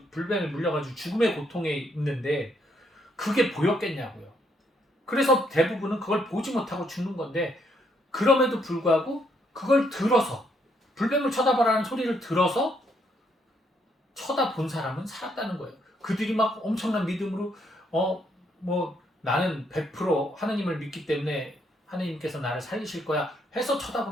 불뱀에 물려가지고 죽음의 고통에 있는데 그게 보였겠냐고요. 그래서 대부분은 그걸 보지 못하고 죽는 건데 그럼에도 불구하고 그걸 들어서 불뱀을 쳐다봐라는 소리를 들어서 쳐다본 사람은 살았다는 거예요. 그들이 막 엄청난 믿음으로 뭐 나는 100% 하느님을 믿기 때문에 하느님께서 나를 살리실 거야 해서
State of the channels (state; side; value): normal; both; correlation 0.73